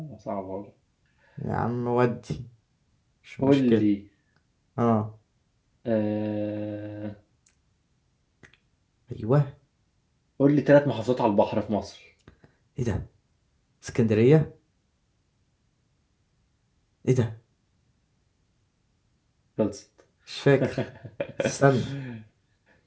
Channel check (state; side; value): identical; both; correlation 1.00